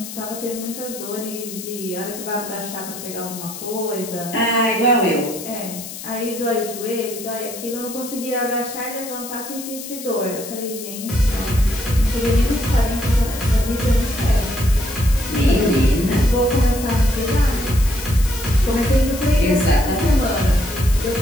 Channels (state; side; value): noise; left; hiss, 11 dB below the sound